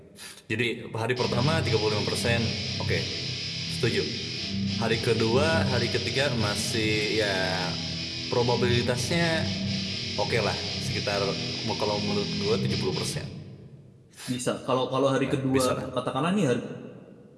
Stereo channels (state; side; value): identical; both; correlation 1.00